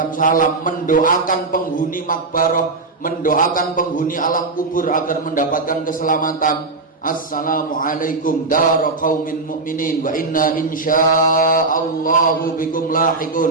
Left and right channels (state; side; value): quieter; left; 3.7 dB